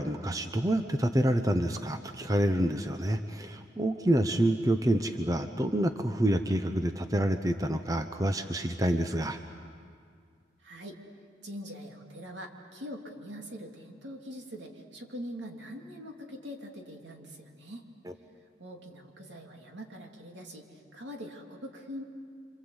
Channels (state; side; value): normal; both; correlation 0.85